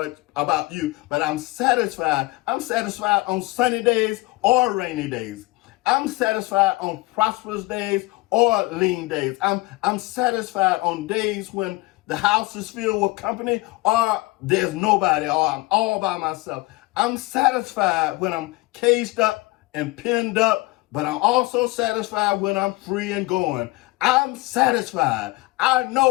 about you, but I'm satisfied. I'm satisfied on sunny days or rainy days. I'm satisfied on prosperous days or lean days. I'm satisfied on days when the house is filled with company or there's nobody or I'm all by myself. I'm satisfied when I'm caged up and pinned up, but I'm also satisfied when I'm free and going. I'm satisfied. I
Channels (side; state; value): right; quieter; 22.2 dB